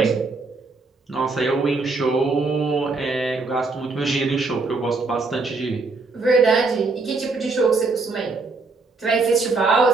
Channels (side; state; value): left; quieter; 3.9 dB